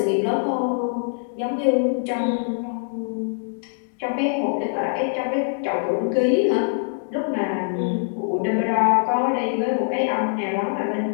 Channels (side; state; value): right; silent; digital silence